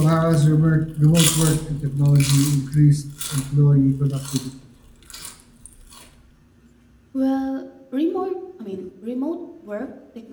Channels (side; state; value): both; identical; correlation 1.00